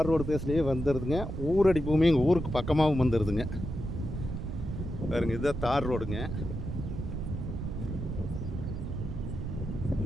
ரோடு பேஸ்லேயே வந்துடுதுங்க. ஊரடி பூமி எங்கள் ஊருக்கு பக்கமாகவும் வந்துடுதுங்க. பாருங்க, இதுதான் தார் ரோடுங்க.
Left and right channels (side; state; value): right; noise; rumble, 5 dB below the sound